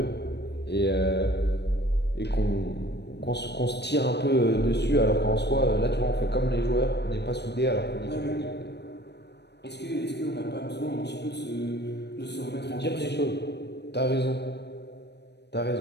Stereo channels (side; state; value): right; late; 0.49 ms